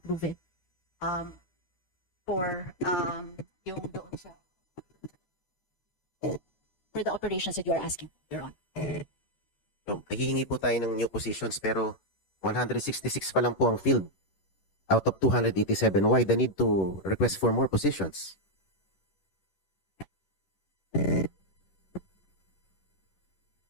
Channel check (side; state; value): right; late; 11 ms